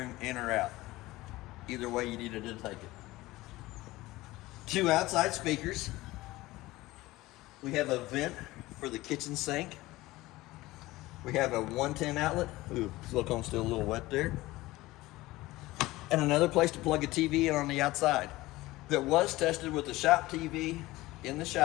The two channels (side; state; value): right; quieter; 18.7 dB